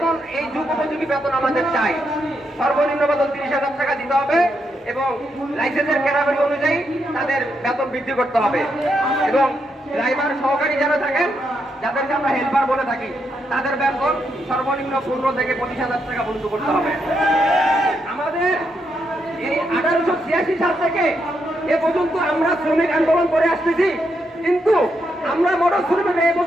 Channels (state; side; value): normal; both; correlation 0.80